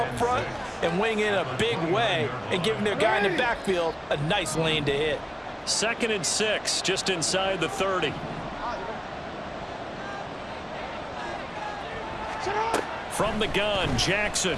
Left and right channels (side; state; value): both; identical; correlation 1.00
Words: front and winning in a big way and giving their guy in the backfield a nice lane to hit. 2nd and 6, just inside the 30. From the gun, Jackson.